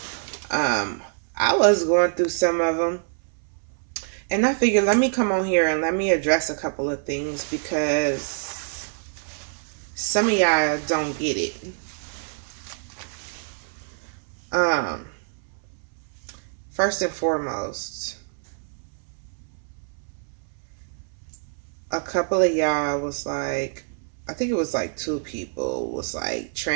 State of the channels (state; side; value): silent; left; 61 dB below the other